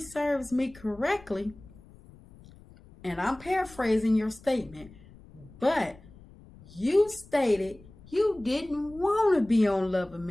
me correctly, and I'm paraphrasing your statement, but you stated you didn't want to be on Love and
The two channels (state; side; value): noise; left; rumble, 22 dB below the sound